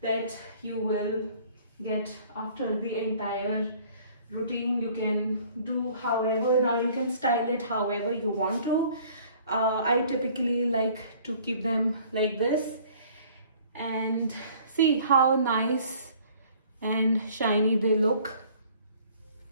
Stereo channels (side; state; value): both; inverted; correlation -0.54